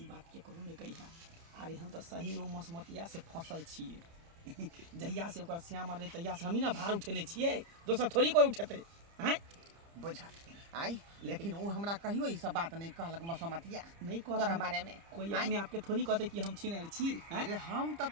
बात के करू ने कहिया अरे हम तो सही नो मसमतिया से फसल छी जहिया से ओकर श्याम रहे तहिया से हम ही ना भार उठेने छिए दोसर थोड़ी कोई उठेते हैं बुझा आइ लेकिन वो हमरा कहियो ई सब बात नहीं कहलक मसमतिया नहीं तोरा कहता बारे में। कोई आँय? अपने आपके थोड़ी कहते कि हम छीने छी हैं? अरे हम तो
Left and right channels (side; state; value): left; late; 30 ms